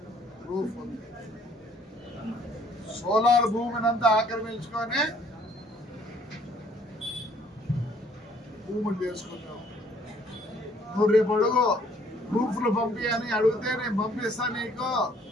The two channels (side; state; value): both; normal; correlation 0.61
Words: ప్రూఫ్ ఉంది. సోలార్ భూమినంతా ఆక్రమించుకొని భూములు చేసుకున్నావు. నువ్వు రేపు అడుగు ప్రూఫ్లు పంపి అని అడిగితే నేను పంపిస్తా నీకు.